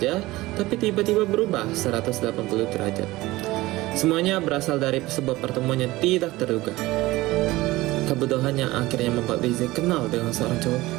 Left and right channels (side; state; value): left; quieter; 19.0 dB